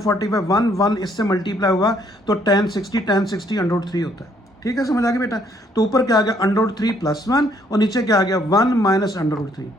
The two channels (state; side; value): normal; both; correlation 0.67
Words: 45 1 इससे मल्टीप्लाई हुआ तो tan 60 √3 होता है, ठीक है। समझ आ गया बेटा। तो ऊपर क्या आ गया √3 प्लस 1 और नीचे क्या आ गया 1 माइनस √3।